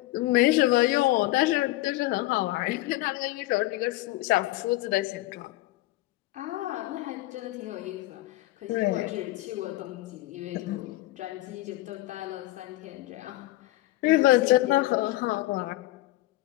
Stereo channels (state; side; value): quieter; right; 17.9 dB